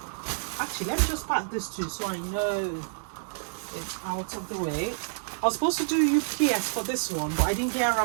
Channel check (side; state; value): left; silent; 59 dB below the other